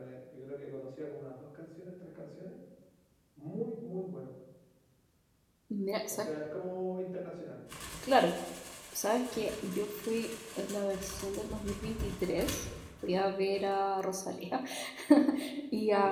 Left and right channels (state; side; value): identical; both; correlation 1.00